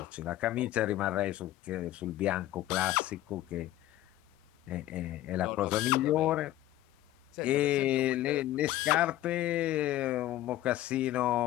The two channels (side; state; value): right; quieter; 14.6 dB